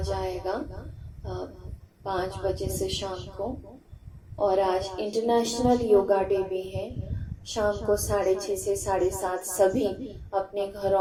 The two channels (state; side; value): identical; both; correlation 1.00